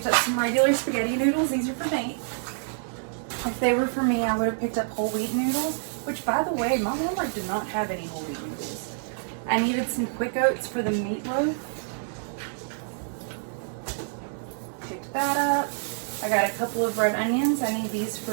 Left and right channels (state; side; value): silent; left; 60 dB below the other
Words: up some regular spaghetti noodles. These are for Nate. If they were for me, I would have picked up whole wheat noodles. Which, by the way, my Walmart did not have any whole wheat noodles. I needed some quick oats for the meatloaf. Picked that up. I got a couple of red onions. I need these